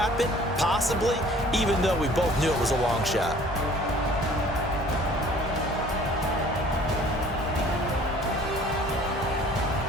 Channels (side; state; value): both; normal; correlation 0.52